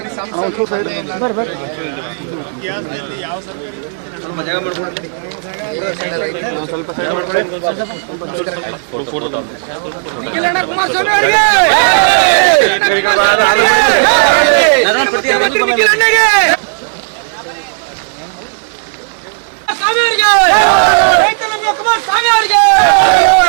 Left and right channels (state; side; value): silent; left; digital silence